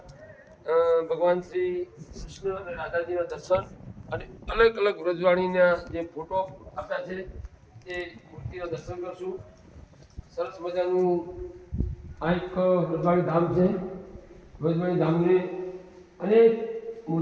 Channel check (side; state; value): both; identical; correlation 1.00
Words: ભગવાન શ્રી કૃષ્ણ અને રાધાજીના દર્શન અને અલગ અલગ વ્રજવાણીના જે ફોટો આપ્યા છે એ મૂર્તિના દર્શન કરશું. સરસ મજાનું આ એક વ્રજવાણી ધામ છે. વ્રજવાણી ધામને અનેક